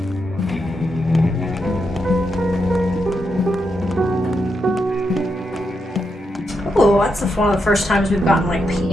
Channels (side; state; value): both; normal; correlation 0.83